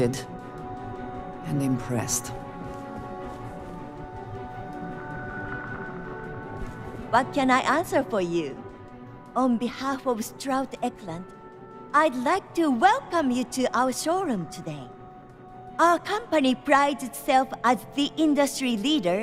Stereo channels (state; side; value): identical; both; correlation 1.00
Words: and impressed. What can I answer for you? On behalf of Stroud Eklund, I'd like to welcome you to our showroom today. Our company prides itself as the industry